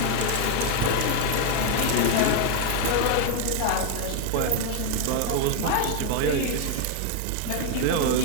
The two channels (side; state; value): both; different; correlation 0.01